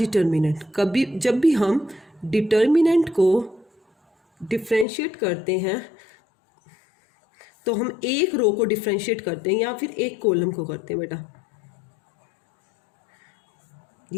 कभी जब भी हम डिटर्मिनेंट को डिफ्रेंशिएट करते हैं तो हम एक रो को डिफ्रेंशिएट करते हैं या फिर एक कॉलम को करते हैं। बेटा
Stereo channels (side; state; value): right; drops out; at 4.9 s